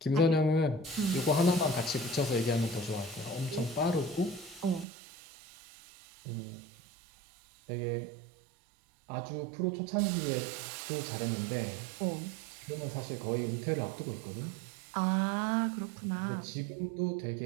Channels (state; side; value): drops out; left; at 4.9 s